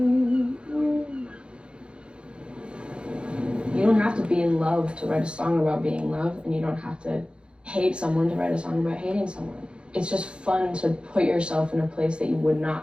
You don't have to be in love to write a song about being in love, and you don't have to hate someone to write a song about hating someone. It's just fun to put yourself in a place that you would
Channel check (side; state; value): left; late; 0.055 ms